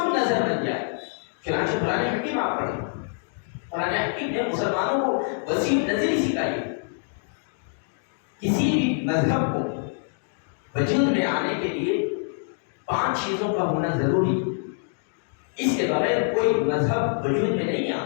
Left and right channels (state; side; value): silent; right; 58 dB below the other